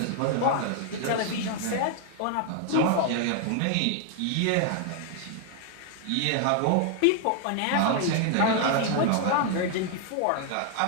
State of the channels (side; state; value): both; different; correlation 0.00